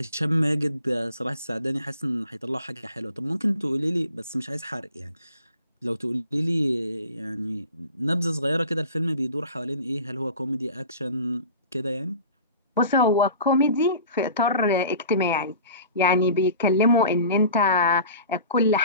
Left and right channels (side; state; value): both; inverted; correlation -0.42